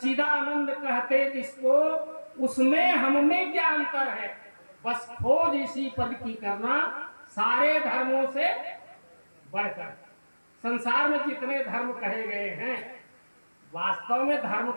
कहते जिसको, उसमें हमने क्या अंतर है, बस खोज इसी पद की करना सारे धर्मों से बढ़कर। संसार में जितने धर्म कहे गए हैं, वास्तव में धर्म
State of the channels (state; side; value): inverted; both; correlation -1.00